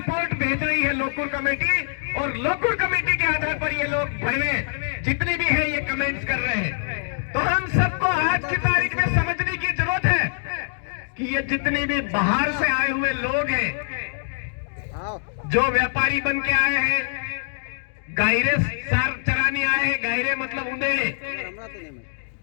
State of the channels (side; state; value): right; silent; digital silence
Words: भेज रही है लोकुर कमेटी, और लोकल कमेटी के आधार पर ये लोग भरवे जितने भी हैं ये कमेंट्स कर रहे हैं। तो हम सबको आज की तारीख में समझने की जरूरत है कि ये जितने भी बाहर से आए हुए लोग हैं, जो व्यापारी बन के आए हैं, गायरे सार चराने आए हैं, गायरे मतलब उंदेड़े,